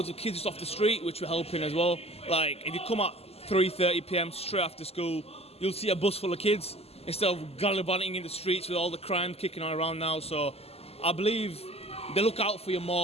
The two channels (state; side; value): late; right; 0.29 ms